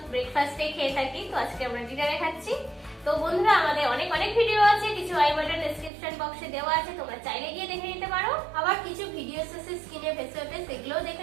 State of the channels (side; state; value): left; drops out; at 5.9 s